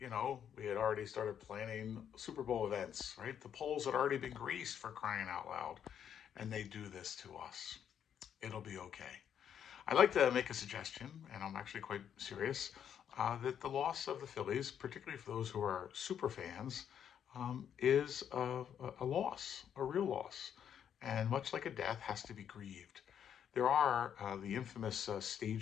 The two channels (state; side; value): quieter; right; 8.9 dB